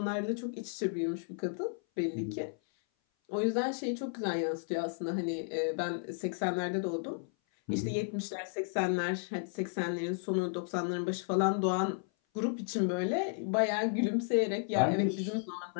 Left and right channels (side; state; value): right; silent; 55 dB below the other